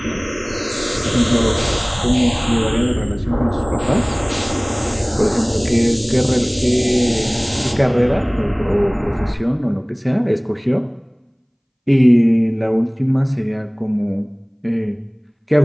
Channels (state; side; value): identical; both; correlation 1.00